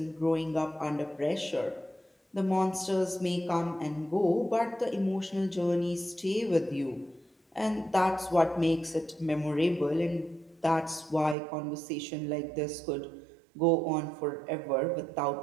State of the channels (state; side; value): drops out; left; at 11.4 s